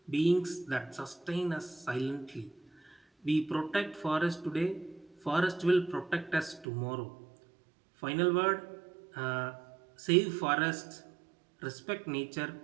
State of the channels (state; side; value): drops out; left; at 6.7 s